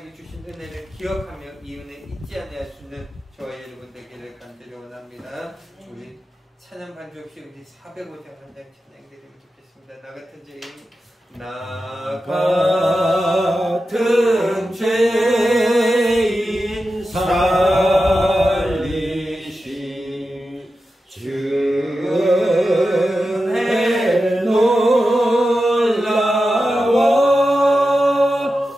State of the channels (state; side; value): normal; both; correlation 0.91